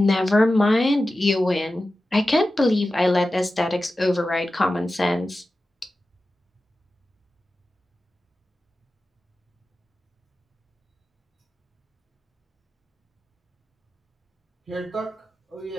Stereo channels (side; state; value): both; normal; correlation 0.94